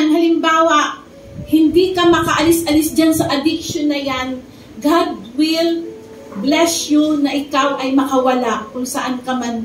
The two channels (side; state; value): both; identical; correlation 1.00